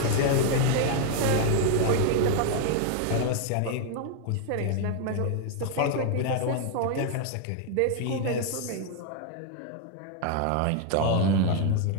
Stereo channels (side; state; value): both; different; correlation 0.01